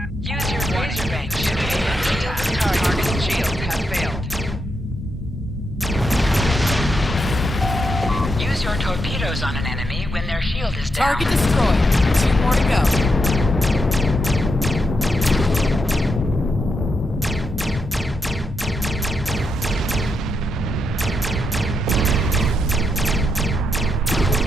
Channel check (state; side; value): normal; both; correlation 0.82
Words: Use your laser range to attack. Target shields have failed. Use your torpedoes on an enemy when their shield is down. Target destroyed. 2 more to go.